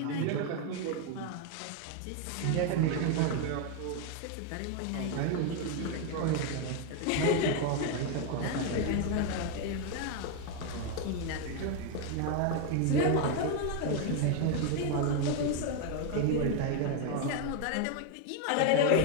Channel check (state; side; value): different; both; correlation 0.01